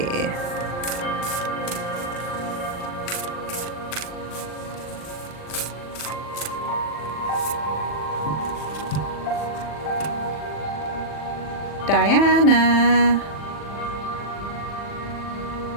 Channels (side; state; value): right; late; 40 ms